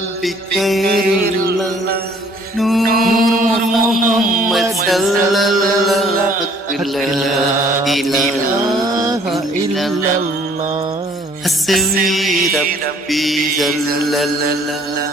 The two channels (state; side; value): normal; both; correlation 0.58